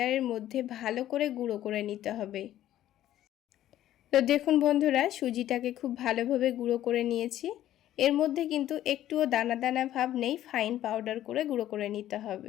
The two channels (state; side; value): quieter; right; 12.8 dB